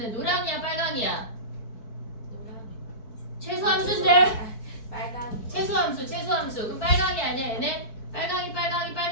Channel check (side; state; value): right; late; 4.6 ms